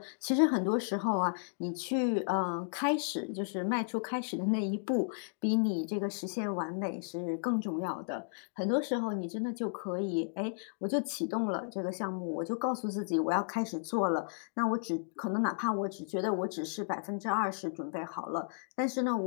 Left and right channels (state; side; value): silent; right; digital silence